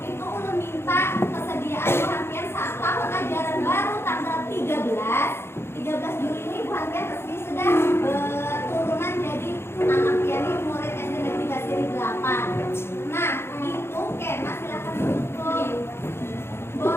itu Ulun minta kesediaan Bu Hantian saat tahun ajaran baru tanggal 13 Juli ini Bu Hantian resmi sudah turunan jadi anak piani murid SD Negeri Basri 8. Nah, itu Kena silakan tutup.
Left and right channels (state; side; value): late; right; 0.12 ms